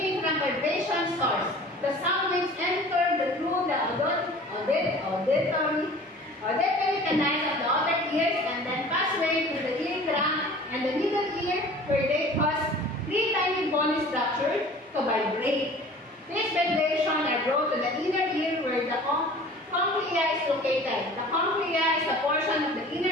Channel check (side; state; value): both; normal; correlation 0.44